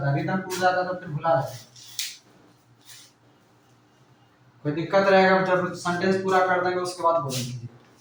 है, रिदम टूट जाता है तो फिर भुला जाता है। कोई दिक्कत रहेगा जब सेंटेंस पूरा कर देंगे उसके बाद बोलेंगे।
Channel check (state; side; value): identical; both; correlation 1.00